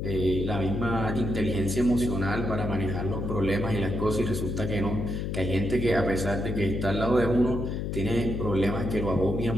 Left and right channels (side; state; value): left; noise; hum, 2 dB below the sound